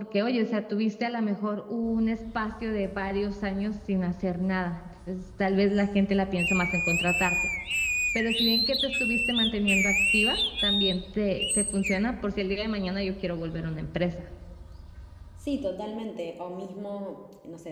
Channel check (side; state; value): both; identical; correlation 1.00